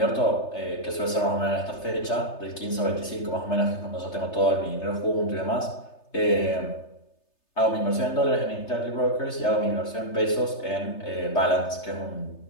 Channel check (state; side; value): late; right; 3.3 ms